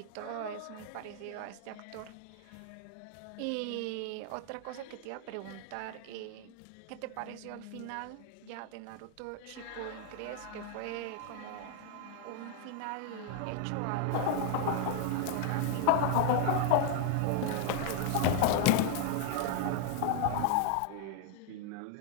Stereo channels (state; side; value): different; both; correlation 0.00